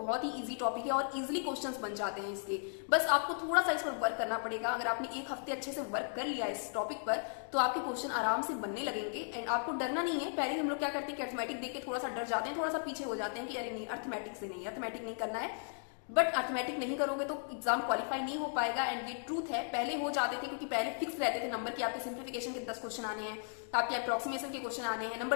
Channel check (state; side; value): silent; right; digital silence